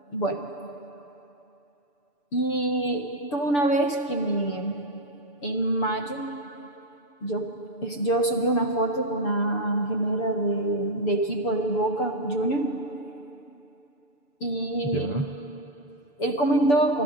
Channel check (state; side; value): late; right; 6.9 ms